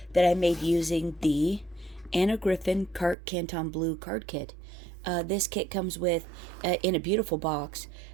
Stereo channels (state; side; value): drops out; left; at 3.2 s